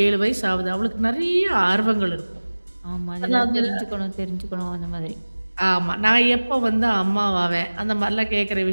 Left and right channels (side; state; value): both; inverted; correlation -1.00